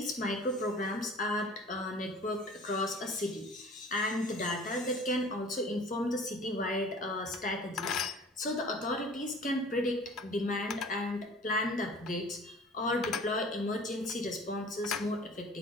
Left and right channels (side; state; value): both; normal; correlation 0.46